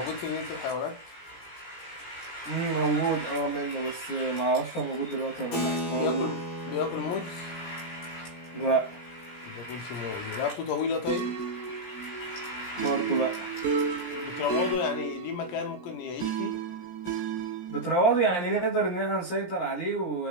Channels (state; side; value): late; right; 17 ms